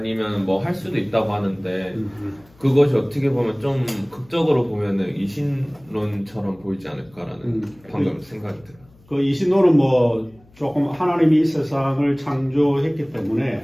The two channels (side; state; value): left; noise; hum, 29 dB below the sound